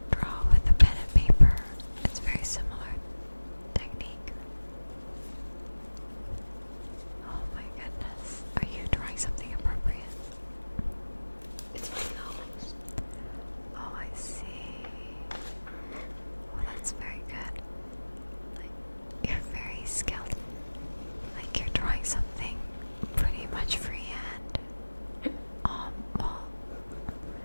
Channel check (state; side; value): inverted; both; correlation -1.00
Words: draw with a pen and paper? It's very similar technique. Oh my goodness. Are you drawing something appropriate? It's my nose. Oh, I see. Well, that's very good. Like, you're very skilled. Like, you're drawing something pretty much freehand. Well,